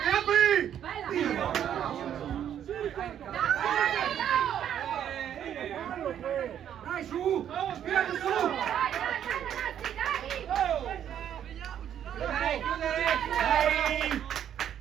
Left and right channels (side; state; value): left; quieter; 9.8 dB